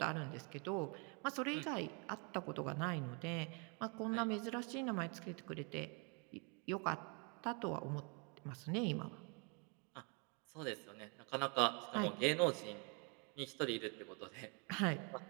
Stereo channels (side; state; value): left; quieter; 34.8 dB